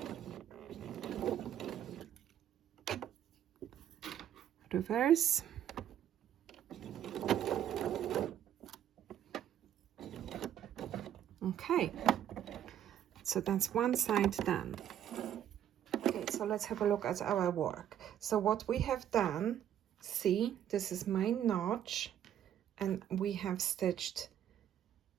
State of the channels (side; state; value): left; quieter; 10.5 dB